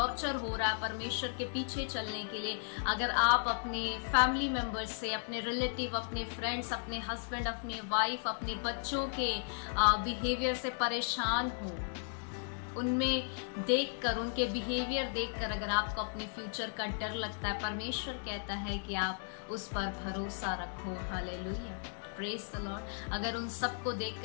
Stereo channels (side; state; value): right; silent; 54 dB below the other